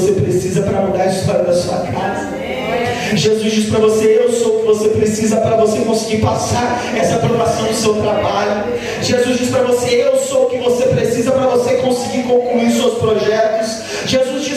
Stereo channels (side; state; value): both; identical; correlation 1.00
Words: precisa para mudar a história da sua casa. Jesus diz para você: eu sou o que você precisa para você conseguir passar essa aprovação do seu trabalho. Jesus diz para você: eu sou o que você precisa para você conseguir concluir seus projetos. Jesus